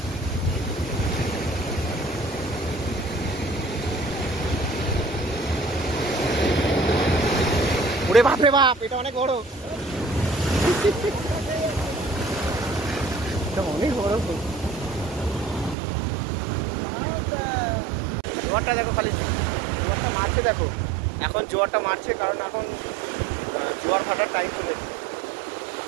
ওরে বাপ রে বাপ, এটা অনেক বড়, এটা অনেক বড়। জোয়ারটা দেখো, খালি জোয়ারটা মারছে দেখো, এখন জোয়ারটা মারছে কারণ এখন জোয়ার ভাটার টাইম চলে এসেছে।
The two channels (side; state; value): left; drops out; at 15.8 s